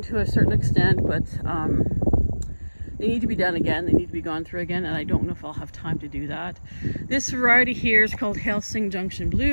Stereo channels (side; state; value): both; inverted; correlation -1.00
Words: to a certain extent, but they need to be done again. They need to be gone through again, and I don't know if I'll have time to do that. This variety here is called Helsing Junction